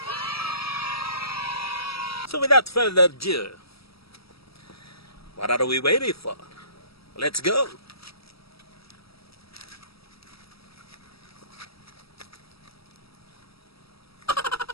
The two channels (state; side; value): late; right; 0.76 ms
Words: So without further ado, what are we waiting for? Let's go!